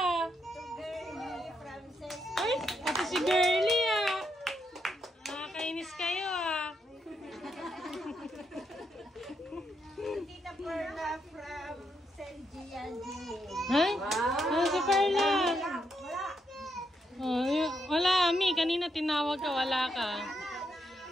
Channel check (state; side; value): normal; both; correlation 0.80